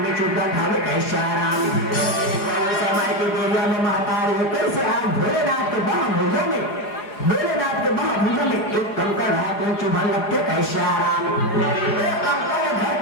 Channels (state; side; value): late; right; 4.8 ms